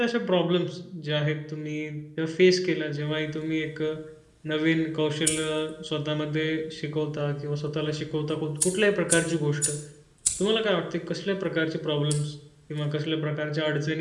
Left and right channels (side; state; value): both; identical; correlation 1.00